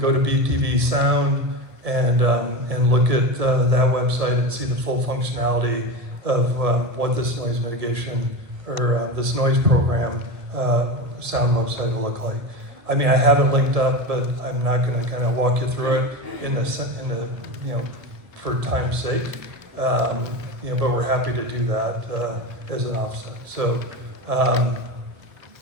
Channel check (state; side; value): late; left; 1.3 ms